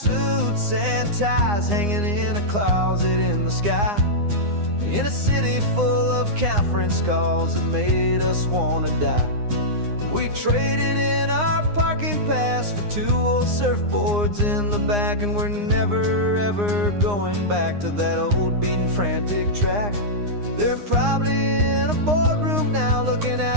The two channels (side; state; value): left; late; 9.7 ms